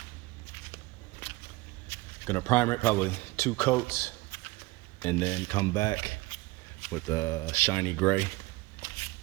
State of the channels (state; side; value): quieter; left; 21.6 dB